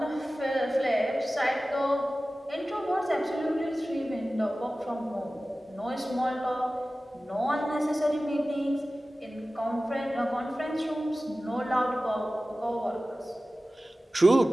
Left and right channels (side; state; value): both; normal; correlation 0.96